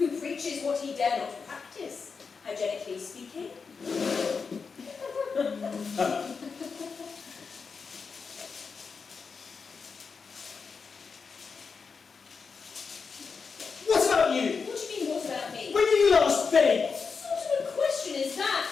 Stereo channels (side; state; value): right; quieter; 5.2 dB